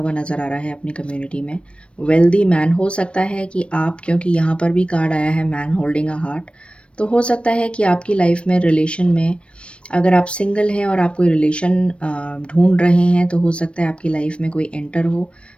नज़र आ रहा है अपनी कम्युनिटी में। वेल्दी मैन, हो सकता है कि आप, क्योंकि यहाँ पर भी कार्ड आया है मैन होल्डिंग अ हार्ट, तो हो सकता है कि आपकी लाइफ में रिलेशन में, अगर आप सिंगल हैं और आप कोई रिलेशन ढूंढ रहे हैं, तो हो सकता है आपकी लाइफ में कोई एंटर हो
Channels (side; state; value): right; late; 0.059 ms